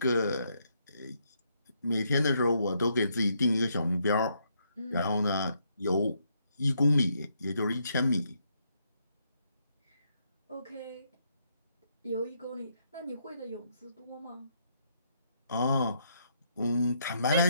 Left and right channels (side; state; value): both; inverted; correlation -0.75